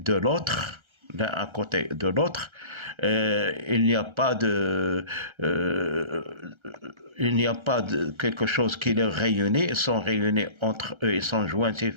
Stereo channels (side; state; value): left; late; 1.3 ms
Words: l'autre, il n'y a pas de quelque chose qui les réunit, ils sont réunis entre eux, ils sont jointifs